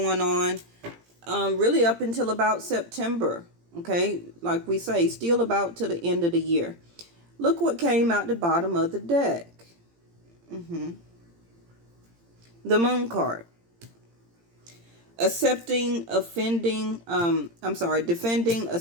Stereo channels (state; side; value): late; left; 17 ms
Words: on, really up until about September. Okay, like we say, still about to the end of the year. Look what came out the bottom of the deck. The Moon card. Defending,